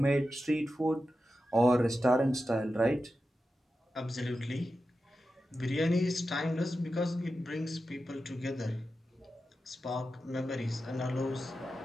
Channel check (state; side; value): normal; both; correlation 0.91